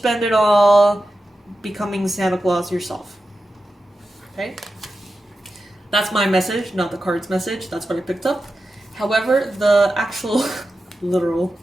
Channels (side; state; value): both; normal; correlation 0.91